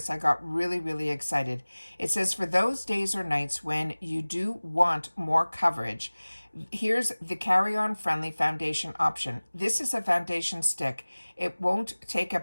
I got really, really excited. It says, for those days or nights when you do want more coverage, here's the carry-on friendly foundation option. This is a foundation stick. It won't take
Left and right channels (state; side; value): inverted; both; correlation -1.00